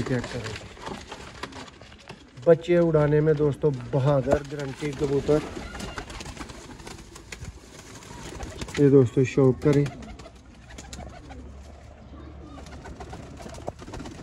चेक करें, बच्चे उड़ाने में दोस्तों बहादुर गारंटी कबूतर। ये दोस्तों शौक करें,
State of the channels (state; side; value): identical; both; correlation 1.00